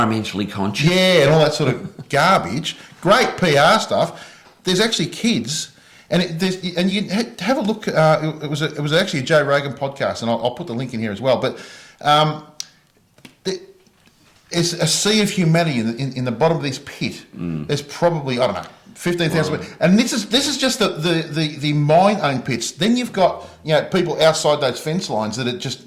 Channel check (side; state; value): both; identical; correlation 1.00